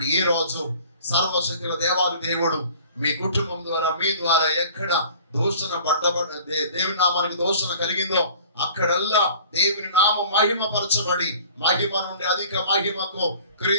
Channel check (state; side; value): inverted; both; correlation -0.48